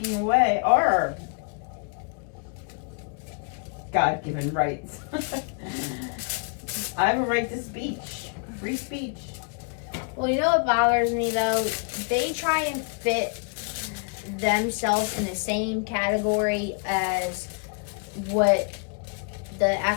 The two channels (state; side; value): quieter; right; 38.4 dB